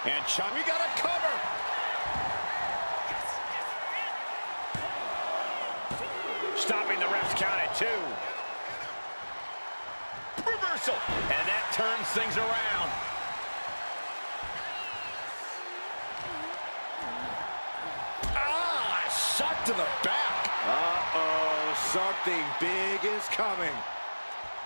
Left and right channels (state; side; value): inverted; both; correlation -1.00